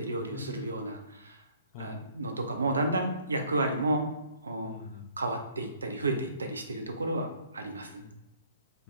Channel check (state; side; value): inverted; both; correlation -0.60